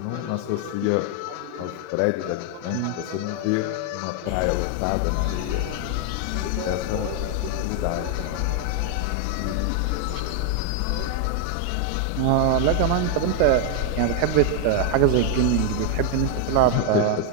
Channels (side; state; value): both; different; correlation 0.01